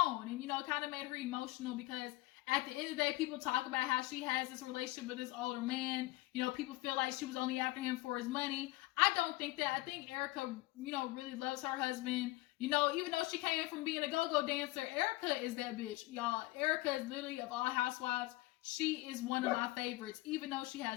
and, kind of made her emotional because at the end of the day, people talk about how she has this relationship with this older man. People feel like she was only after him for his money. I don't think that. I think Erika, really loves her husband. Even though she came from being a go-go dancer, Erika is that bitch, y'all. Erika is literally, of all housewives, she is one of my favorites. Even though she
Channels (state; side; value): quieter; right; 19.8 dB